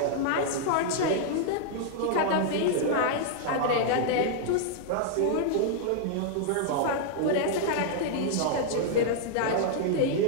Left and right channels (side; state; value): both; different; correlation -0.01